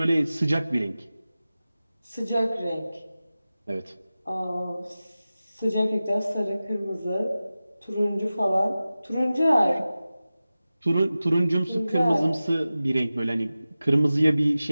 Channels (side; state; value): both; inverted; correlation -0.95